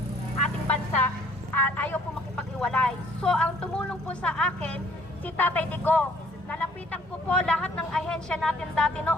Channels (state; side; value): normal; both; correlation 0.60